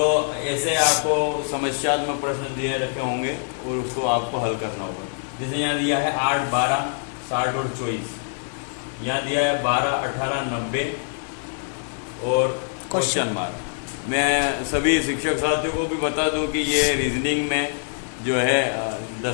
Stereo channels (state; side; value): silent; right; digital silence